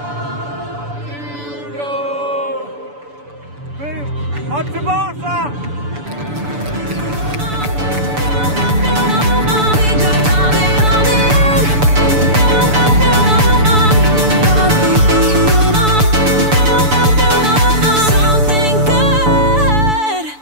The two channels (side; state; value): left; late; 6.9 ms